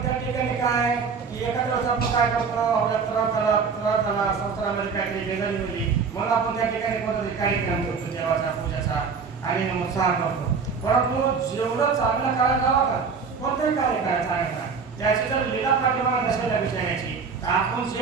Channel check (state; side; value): quieter; left; 5.4 dB